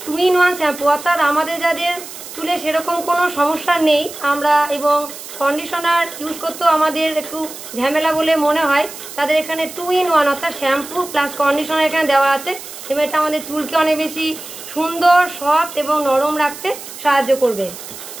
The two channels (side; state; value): right; noise; hiss, 13 dB below the sound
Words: 2-in-1 শ্যাম্পু, অর্থাৎ আমাদের যাদের চুলে সেরকম কোনো সমস্যা নেই আমরা এবং কন্ডিশনার ইউজ করতেও আমাদের একটু ঝামেলা বলে মনে হয়, তাদের এখানে 2-in-1 অর্থাৎ শ্যাম্পু প্লাস কন্ডিশনার এখানে দেওয়া আছে। এবং এটা আমাদের চুলকে অনেক বেশি সুন্দর, সফট এবং নরম রাখতে সাহায্য করবে।